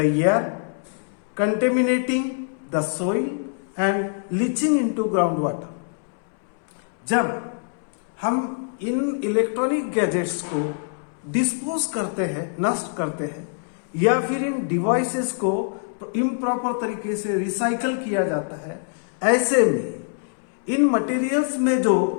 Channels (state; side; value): silent; right; 63 dB below the other